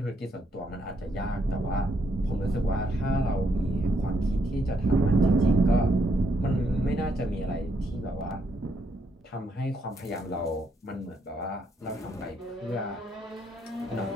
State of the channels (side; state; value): both; normal; correlation 0.74